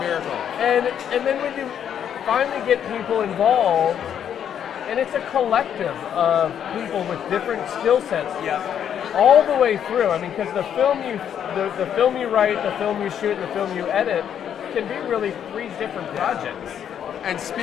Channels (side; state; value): right; quieter; 9.1 dB